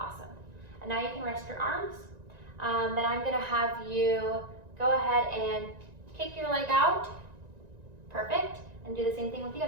And now you can rest your arms. Then I'm gonna have you go ahead and kick your leg out, perfect, and do the same thing with the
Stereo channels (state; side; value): late; left; 1.9 ms